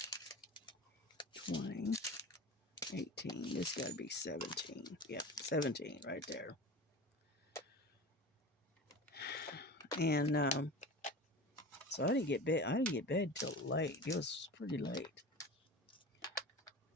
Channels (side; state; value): both; normal; correlation 0.33